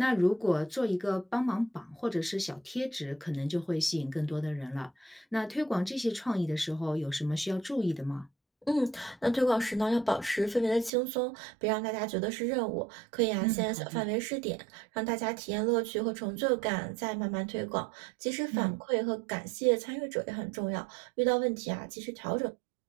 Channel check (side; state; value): left; drops out; at 10.9 s